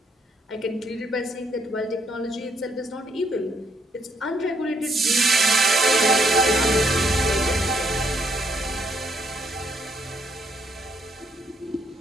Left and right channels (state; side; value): normal; both; correlation 0.72